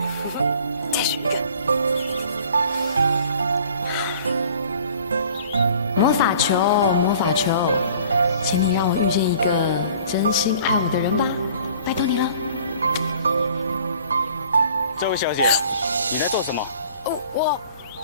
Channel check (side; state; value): both; inverted; correlation -0.51